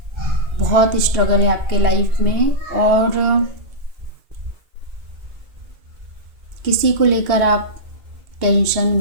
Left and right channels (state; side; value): late; left; 2.3 ms